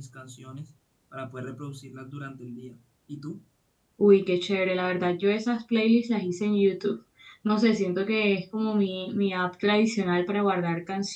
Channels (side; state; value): both; identical; correlation 1.00